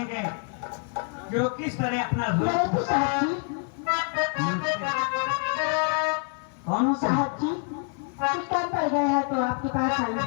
कि वो किस तरह अपना जुल्म कौन सा साहब जी कुछ काम पड़ गया है तो आपके पास आई हूँ।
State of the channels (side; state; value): right; quieter; 38.6 dB